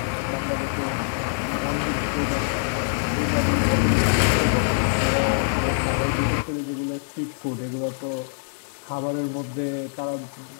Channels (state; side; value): silent; right; 62 dB below the other